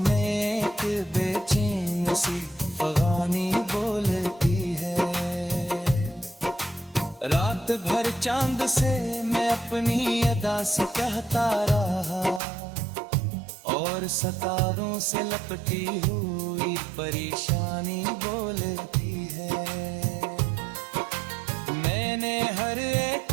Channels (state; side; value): drops out; left; at 12.4 s